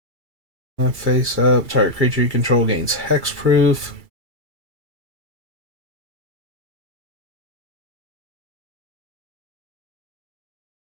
Face up. Target creature you control gains hexproof.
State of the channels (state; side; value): late; left; 2.3 ms